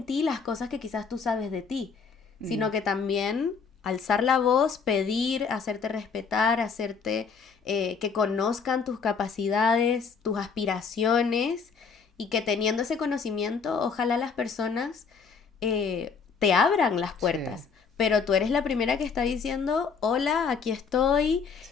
ti las cosas que quizás tú sabes de ti, sino que también alzar la voz, pedir, hacerte respetar, que conozcan tus capacidades, tus aspiraciones, y que teniendo ese conocimiento, ojalá las personas te abran las puertas. Sí, Pero tú eres la primera que está diciendo, hola, aquí estoy,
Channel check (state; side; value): quieter; right; 5.6 dB